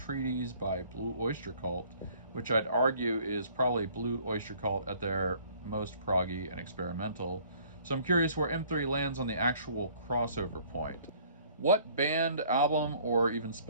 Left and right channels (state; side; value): inverted; both; correlation -0.57